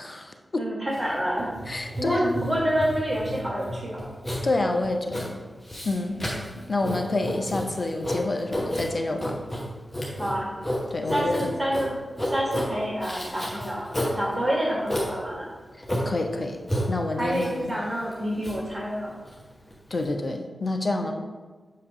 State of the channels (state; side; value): normal; both; correlation 0.92